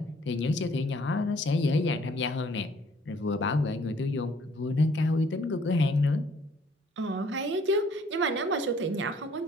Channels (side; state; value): both; normal; correlation 0.60